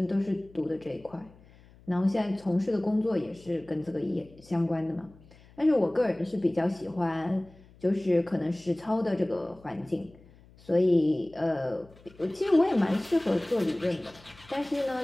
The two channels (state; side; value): noise; left; hum, 25 dB below the sound